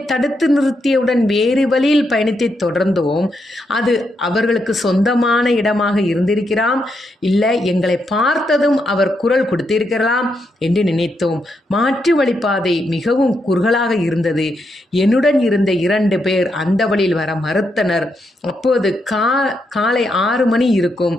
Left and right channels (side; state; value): both; normal; correlation 0.81